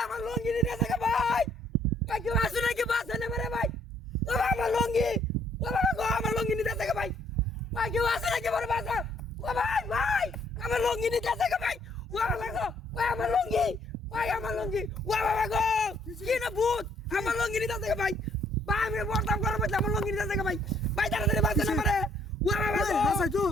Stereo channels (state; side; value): normal; both; correlation 0.65